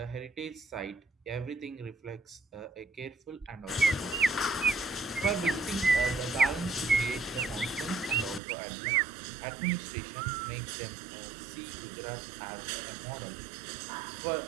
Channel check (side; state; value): left; drops out; at 8.4 s